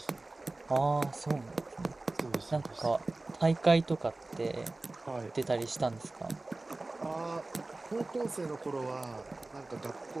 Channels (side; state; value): left; quieter; 3.0 dB